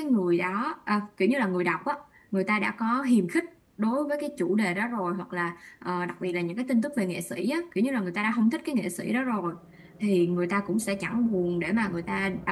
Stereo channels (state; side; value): identical; both; correlation 1.00